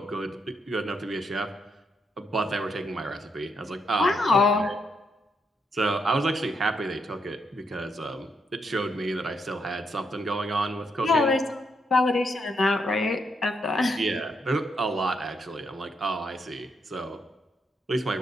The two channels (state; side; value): normal; both; correlation 0.78